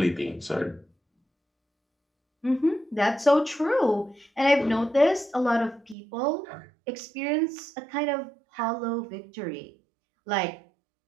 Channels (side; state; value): left; drops out; at 6.0 s